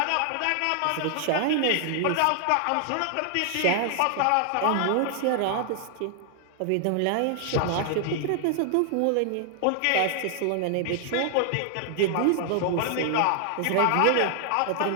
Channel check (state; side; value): different; both; correlation 0.00